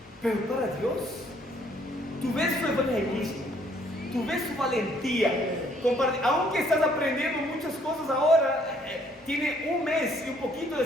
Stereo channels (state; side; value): normal; both; correlation 0.65